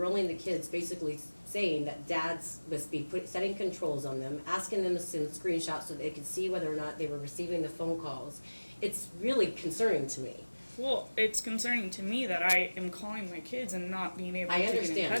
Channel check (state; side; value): inverted; both; correlation -1.00